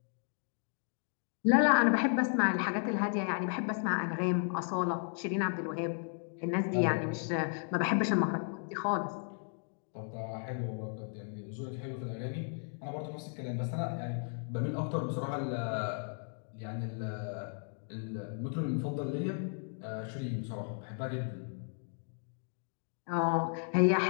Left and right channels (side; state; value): right; silent; 55 dB below the other